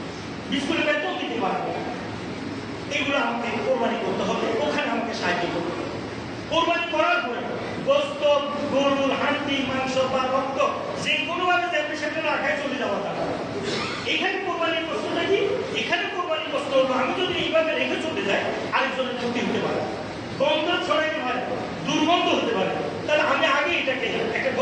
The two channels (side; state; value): both; identical; correlation 1.00